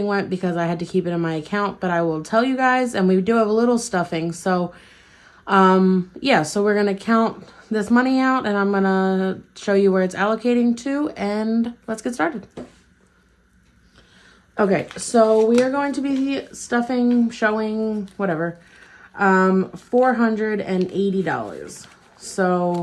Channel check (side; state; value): both; identical; correlation 1.00